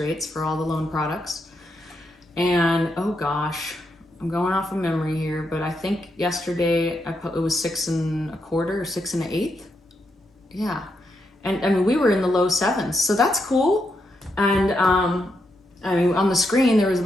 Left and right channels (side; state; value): both; normal; correlation 0.81